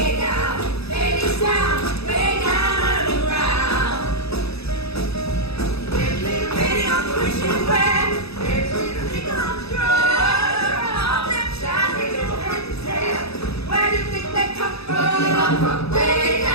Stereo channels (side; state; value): right; late; 0.78 ms